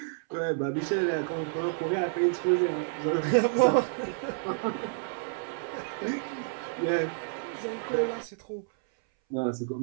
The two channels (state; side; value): silent; left; 58 dB below the other